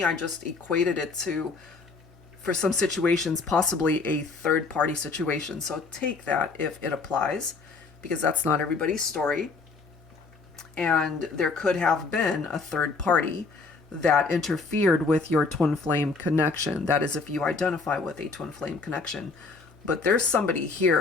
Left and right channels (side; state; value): right; quieter; 4.2 dB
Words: I just equated it to, for some situations, possibly a third party situation. So take that if it applies, because that's not everybody's story. And there could have been a third party that interfered with your twin flame connection. That is, if you identify with a twin flame connection. But there's somebody